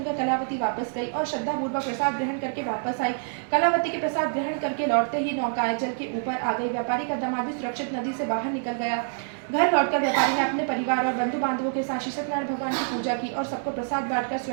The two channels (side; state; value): left; silent; digital silence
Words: कलावती वापस गई और श्रद्धापूर्वक प्रसाद ग्रहण करके वापस आई। कलावती के प्रसाद ग्रहण करके लौटते ही नौकाएं जल के ऊपर आ गई। व्यापारी का दामाद भी सुरक्षित नदी से बाहर निकल गया। घर लौटकर व्यापारी ने अपने परिवार और बंधु बांधवों के साथ श्री सत्यनारायण भगवान की पूजा की और सबको प्रसाद बांटकर